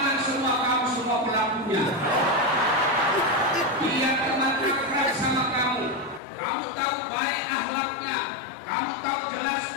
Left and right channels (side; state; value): right; drops out; at 6.2 s